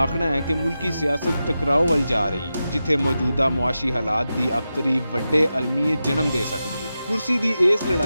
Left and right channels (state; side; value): inverted; both; correlation -0.91